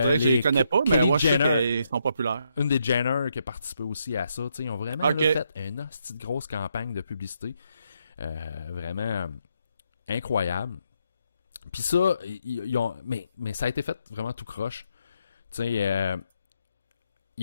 que je les connais pas, mais moi, je sais qu'ils sont populaires. Une des Jenner qui a participé aussi à ça, tu sais, ils ont vraiment là, fait une hostie de grosse campagne de publicité. Vraiment incroyable. Puis ça, ils ont... mais ça a été fait vraiment tout croche. Tu sais, il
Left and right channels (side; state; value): both; inverted; correlation -0.78